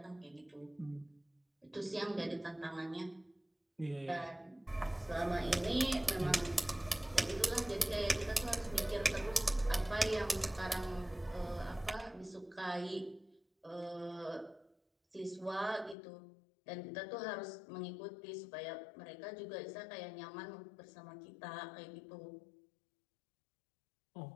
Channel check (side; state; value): right; drops out; at 16.0 s